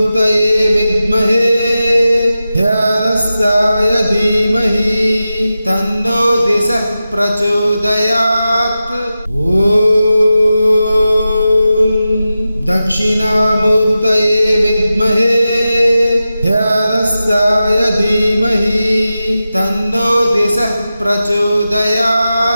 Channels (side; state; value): both; inverted; correlation -0.93